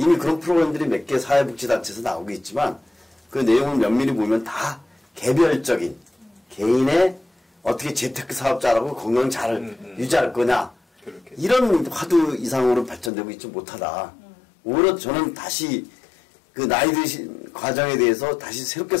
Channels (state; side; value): drops out; right; at 13.1 s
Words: 그런 프로그램들이 몇 개 사회복지단체에서 나오고 있지만 그 내용을 면밀히 보면 다 개별적인 개인의 어떻게 재테크 사업자라고 건강 잘 유지할 거냐 그렇게. 이런 화두 이상으로 발전되고 있지 못하다. 오히려 저는 다시 그 나이 드신 과정에 대해서 다시 새롭게